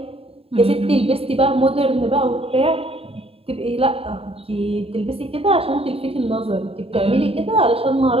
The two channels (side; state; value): left; late; 0.28 ms